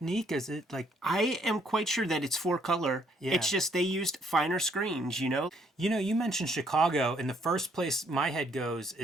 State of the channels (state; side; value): normal; both; correlation 0.68